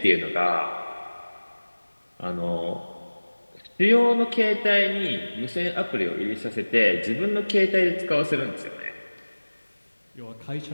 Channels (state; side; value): inverted; both; correlation -1.00